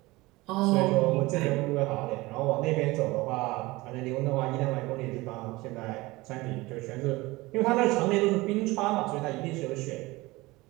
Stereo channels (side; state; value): left; quieter; 21.2 dB